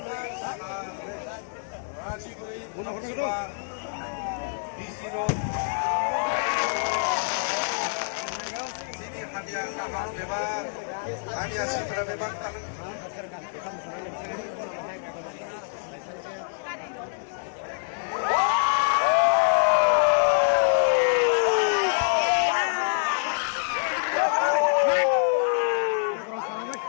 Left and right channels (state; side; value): silent; right; digital silence